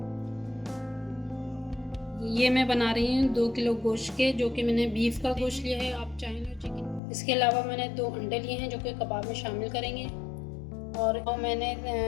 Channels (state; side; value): drops out; right; at 7.0 s